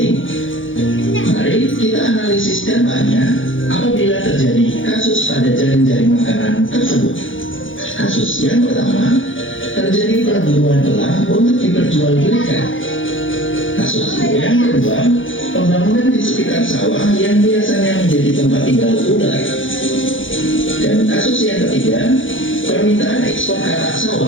Mari kita analisis dampaknya apabila terjadi kasus pada jaring-jaring makanan tersebut. Kasus yang pertama, terjadi perburuan elang untuk diperjualbelikan. Kasus yang kedua, pembangunan di sekitar sawah yang biasanya menjadi tempat tinggal ular. Dan kasus yang ketiga, permintaan ekspor katak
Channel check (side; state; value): right; late; 0.57 ms